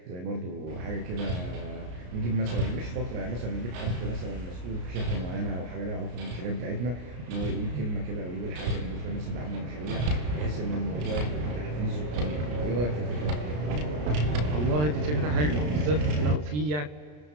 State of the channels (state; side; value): late; left; 33 ms